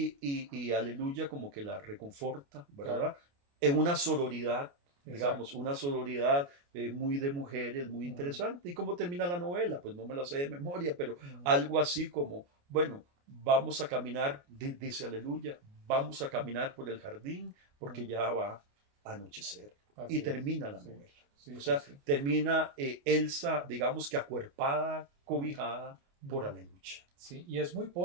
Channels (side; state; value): left; late; 29 ms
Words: Aleluya como que la reconforta, ¿verdad? Claro. En una sororidad. Digamos, una sororidad muy de mujeres, muy interesante. ¿Y cómo termina la novela? Pues no me la sé de memoria, pero algo así como, bueno, vamos a caminar, dice Aleluya, vamos a caminar por el jardín porque ya va a anochecer. Así y termina la novela. O sea, termina Elsa, digamos que acuerpada, cobijada por Aleluya. Sí, y es muy